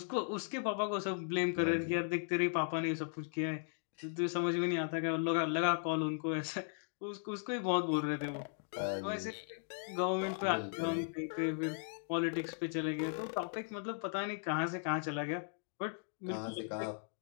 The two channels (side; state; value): right; silent; digital silence